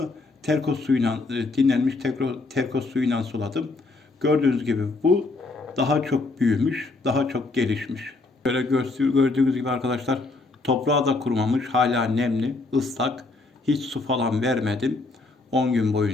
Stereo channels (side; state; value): right; quieter; 3.4 dB